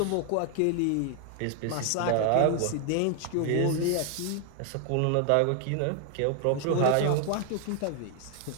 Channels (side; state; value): both; different; correlation 0.00